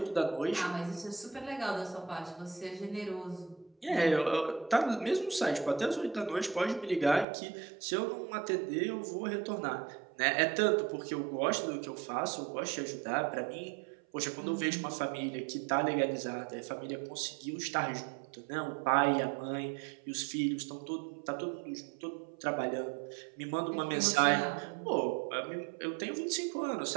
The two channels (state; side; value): drops out; left; at 7.2 s